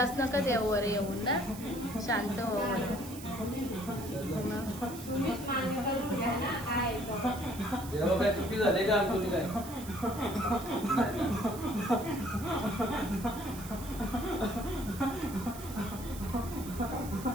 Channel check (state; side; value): noise; right; hiss, 14 dB below the sound